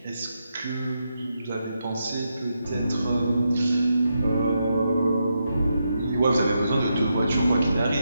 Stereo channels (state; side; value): inverted; both; correlation -0.84